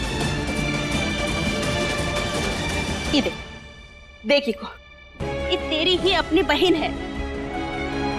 ये देख, देखी को, ये तेरी ही अपनी बहन है,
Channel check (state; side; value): identical; both; correlation 1.00